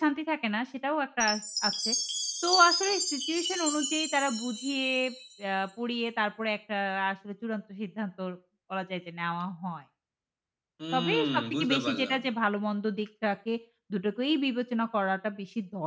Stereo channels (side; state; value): both; identical; correlation 1.00